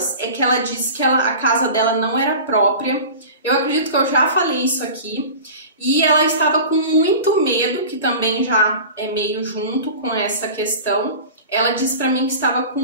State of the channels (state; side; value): inverted; both; correlation -0.36